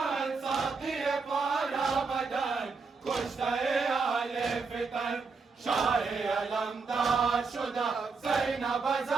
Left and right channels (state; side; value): quieter; left; 4.7 dB